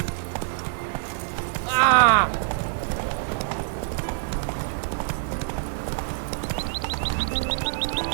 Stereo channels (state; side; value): silent; left; digital silence